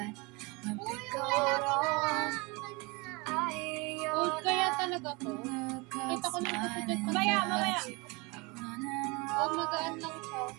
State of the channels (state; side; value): quieter; left; 27.1 dB